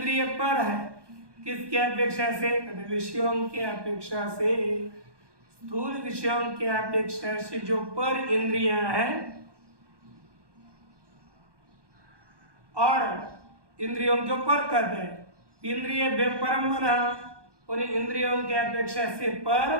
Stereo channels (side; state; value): left; late; 1.2 ms